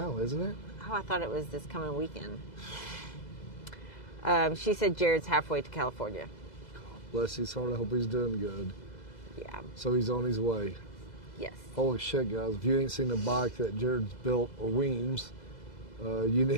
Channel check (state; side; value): late; right; 2.0 ms